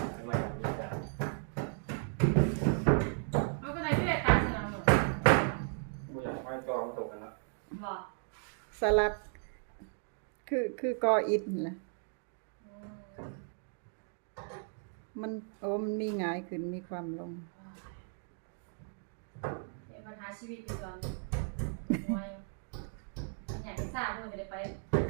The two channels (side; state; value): left; silent; 54 dB below the other